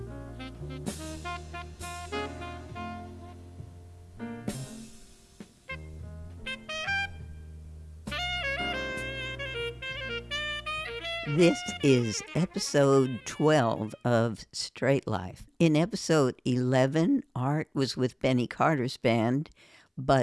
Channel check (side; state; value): both; identical; correlation 1.00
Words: This is episode 12 of Straight Life. In episode 11, Art was with Benny Carter's band,